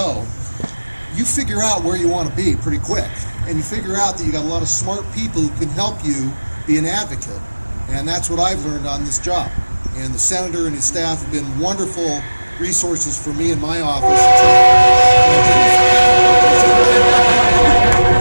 you figure out where you want to be pretty quick, and you figure out that you got a lot of smart people who can help you be an advocate, and that's what I've learned on this job. And the senator and his staff have been wonderful resources for me in my office.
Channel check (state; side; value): inverted; both; correlation -1.00